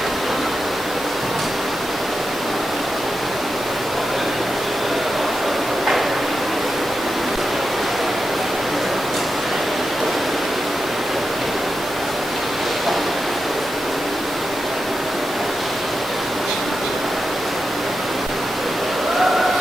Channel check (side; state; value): both; normal; correlation 0.90